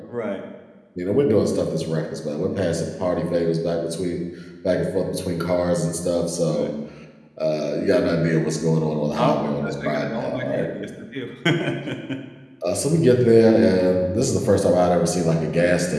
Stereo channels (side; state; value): both; identical; correlation 1.00